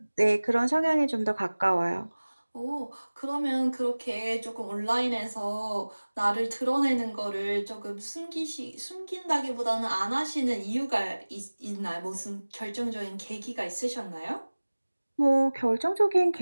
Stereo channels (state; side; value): inverted; both; correlation -1.00